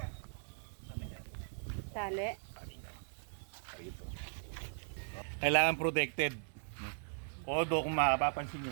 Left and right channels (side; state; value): left; silent; 52 dB below the other